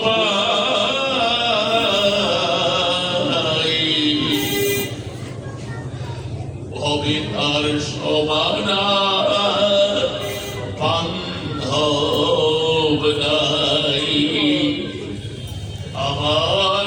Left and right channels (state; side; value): identical; both; correlation 1.00